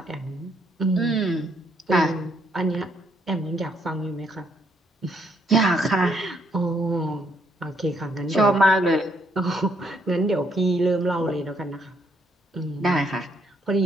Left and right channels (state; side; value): normal; both; correlation 0.71